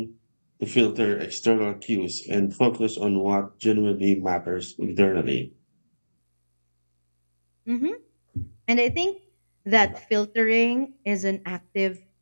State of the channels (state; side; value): inverted; both; correlation -1.00